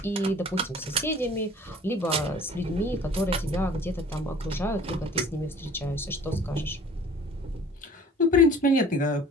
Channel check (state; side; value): normal; both; correlation 0.48